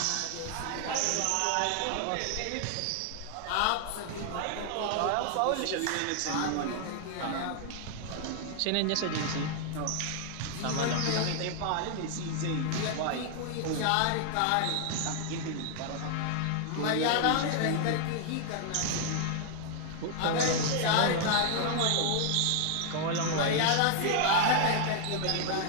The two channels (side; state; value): both; different; correlation 0.00